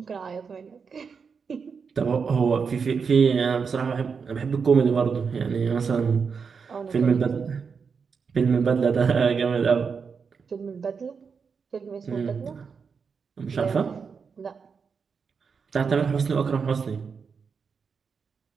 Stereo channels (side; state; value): left; quieter; 5.8 dB